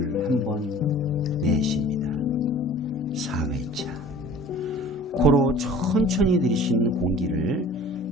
한번 내쉽니다. 4회차 코로 천천히 들이신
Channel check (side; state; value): both; normal; correlation 0.46